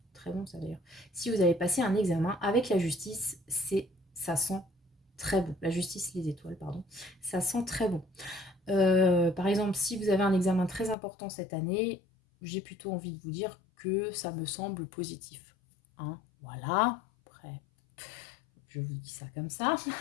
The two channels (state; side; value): drops out; right; at 11.0 s